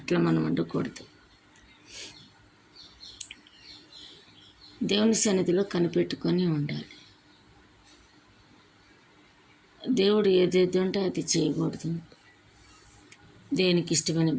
మనం ఉండకూడదు. దేవుని సన్నిధిలో కనిపెట్టుకొని ఉండాలి. దేవుడు ఏదైతే ఉంటే అది చేయకూడదు. దేనికి ఇష్టమైన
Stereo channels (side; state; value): both; identical; correlation 1.00